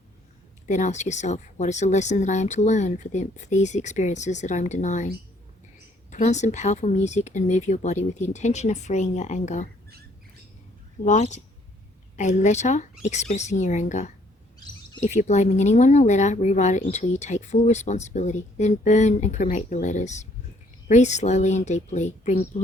Then ask yourself, what is the lesson that I am to learn for these experiences that I am denying? Put on some powerful music and move your body with the intention of freeing your anger. Write a letter expressing your anger. If you're blaming anyone in a letter, rewrite it until you take full responsibility. Then burn and cremate the letters. Breathe slowly and deeply. Bring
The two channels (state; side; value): normal; both; correlation 0.64